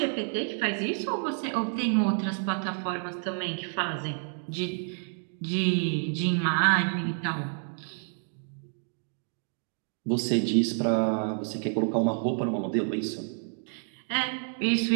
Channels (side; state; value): left; silent; 58 dB below the other